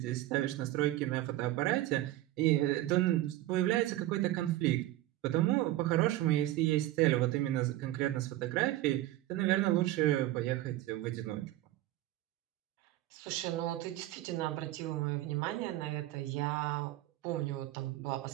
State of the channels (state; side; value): quieter; left; 15.4 dB